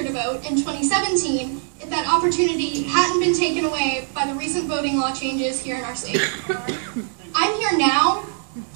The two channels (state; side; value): silent; left; 64 dB below the other